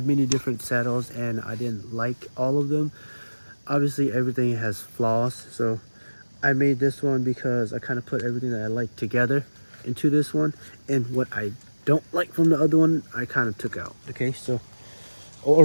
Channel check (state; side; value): inverted; both; correlation -1.00